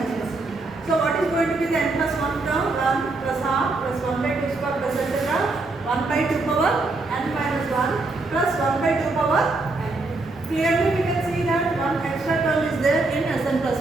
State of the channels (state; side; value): quieter; left; 3.3 dB